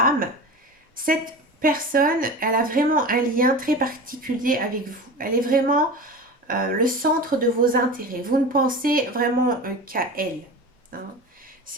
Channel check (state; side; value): normal; both; correlation 0.31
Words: cette personne, elle a vraiment un lien très particulier avec vous. Elle est vraiment le centre de vos intérêts. Vous ne pensez vraiment qu'à elle, hein.